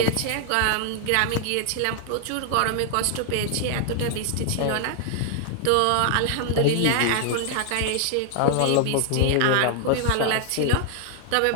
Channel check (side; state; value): both; different; correlation 0.00